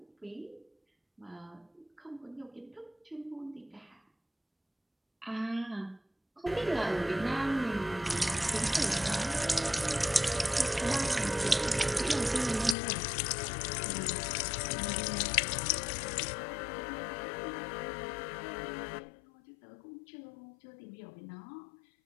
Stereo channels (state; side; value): drops out; right; at 12.8 s